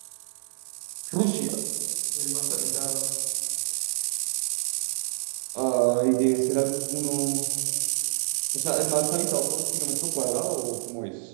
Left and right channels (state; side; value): silent; left; digital silence